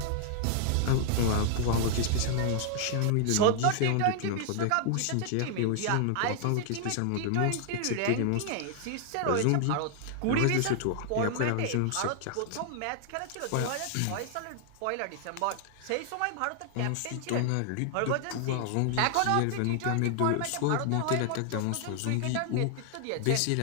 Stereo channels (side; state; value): both; different; correlation 0.00